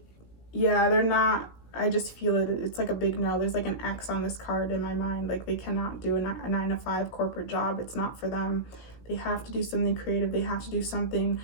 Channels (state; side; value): late; right; 17 ms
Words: yeah, they're not, I just feel it. It's like a big no. There's like an X on this card in my mind. Like, they cannot do a 9-to-5 corporate job. It's not for them. They have to do something creative. They have to do something